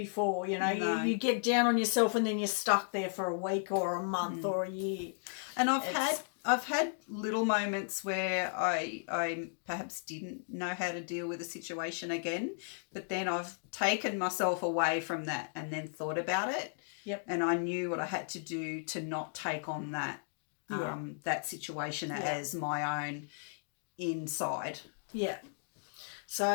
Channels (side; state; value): right; silent; digital silence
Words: You know, you get down on yourself and then you're stuck there for a week or a month or a year. And I've had little moments where I perhaps didn't know how to deal with a situation again, but then I've taken myself away from that and then thought about it. Yep. And I knew what I had to do to not take on that that situation as my own inside. Yeah.